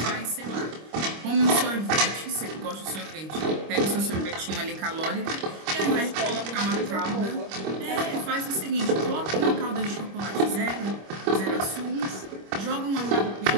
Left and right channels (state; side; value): late; left; 25 ms